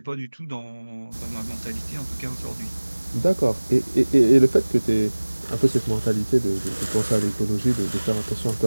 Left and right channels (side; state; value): both; inverted; correlation -1.00